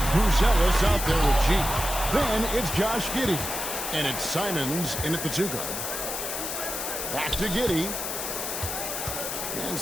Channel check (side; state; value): left; noise; hiss, 4 dB below the sound